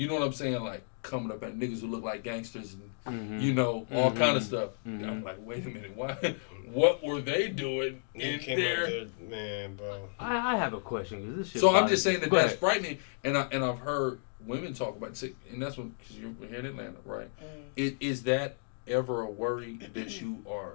know what I'm saying? Like coming up at niggas who look like gangsters and you know all kind of stuff. I'm like, wait a minute, why? What were they doing in there? Man, bro. I have a question because this shit. So I'm bothers just saying me. that Go that's ahead. frightening, and I've heard women talk about it, and that's when because you're here in Atlanta, right? Is that ever a worry that you are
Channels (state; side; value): silent; right; digital silence